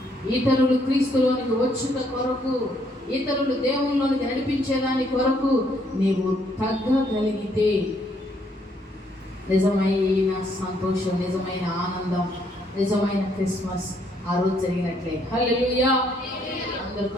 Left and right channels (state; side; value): normal; both; correlation 0.70